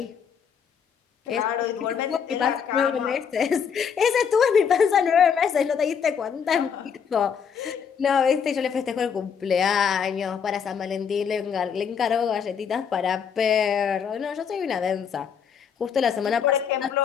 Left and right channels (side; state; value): right; quieter; 7.1 dB